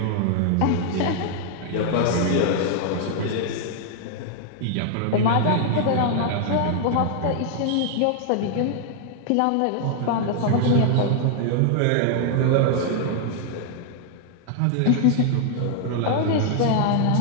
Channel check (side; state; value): both; different; correlation 0.00